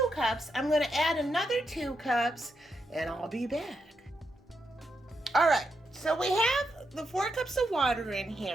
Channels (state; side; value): normal; both; correlation 0.82